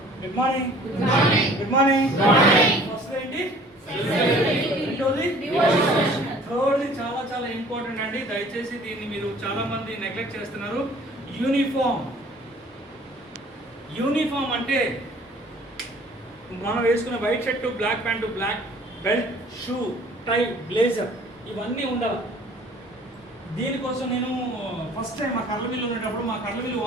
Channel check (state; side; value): normal; both; correlation 0.52